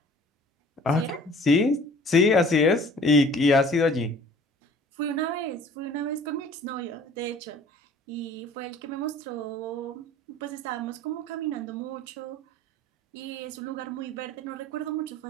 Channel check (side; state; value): both; normal; correlation 0.49